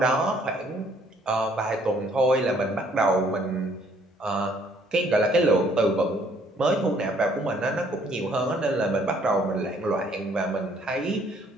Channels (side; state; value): both; normal; correlation 0.63